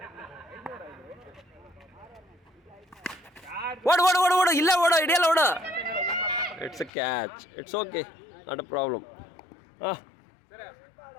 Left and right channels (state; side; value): drops out; right; at 6.9 s